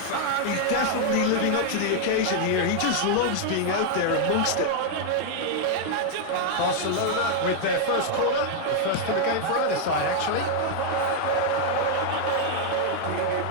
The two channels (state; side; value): different; both; correlation 0.00